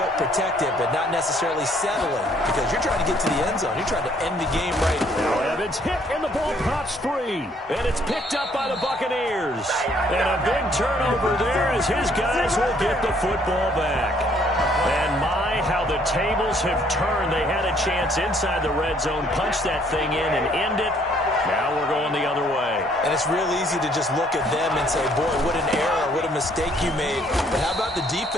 protect it, but not necessarily settle it, because you're trying to get to the end zone. You're trying to end the game right now. Now Evans hit, and the ball pops free. And it's picked up by the Buccaneers. And a big turnover there as his guys will get the football back. And my, how the tables have turned. They had a chance inside the red zone, punch that thing in and end it. Now we're going the other way. And it's real easy to just look at them and say, boy, what an error, what a mistake you made. But how about the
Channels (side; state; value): both; normal; correlation 0.64